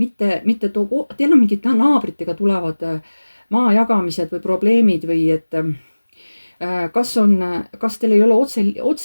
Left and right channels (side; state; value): both; inverted; correlation -1.00